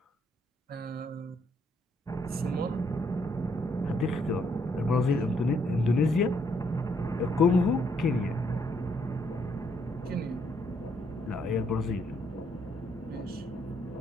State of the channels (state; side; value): normal; both; correlation 0.72